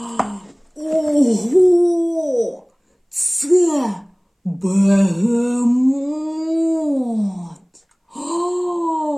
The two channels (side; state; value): both; identical; correlation 1.00